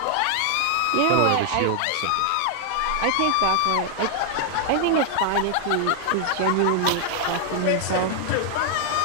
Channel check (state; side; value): different; both; correlation 0.00